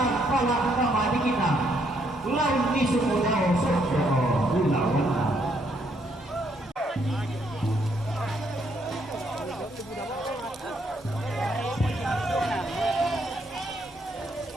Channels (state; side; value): normal; both; correlation 0.72